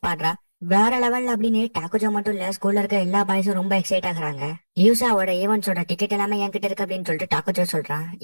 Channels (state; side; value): inverted; both; correlation -1.00